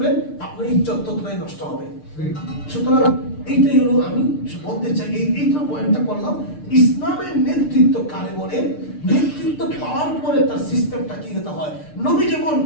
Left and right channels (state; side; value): late; right; 6.7 ms